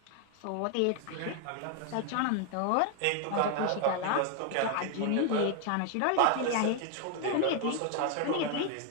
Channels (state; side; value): different; both; correlation 0.00